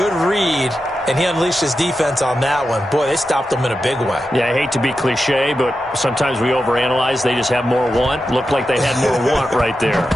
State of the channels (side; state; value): both; normal; correlation 0.90